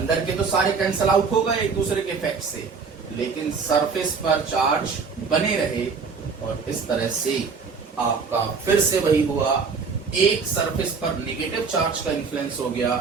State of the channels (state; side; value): quieter; left; 5.2 dB